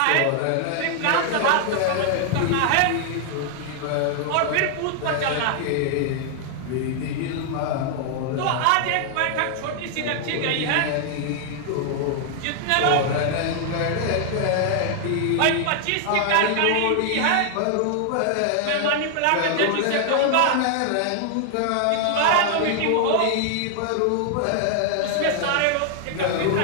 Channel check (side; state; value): both; different; correlation 0.00